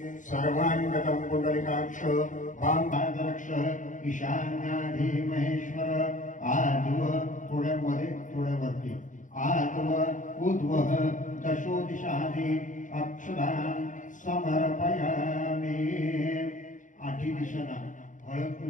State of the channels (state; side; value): late; right; 0.37 ms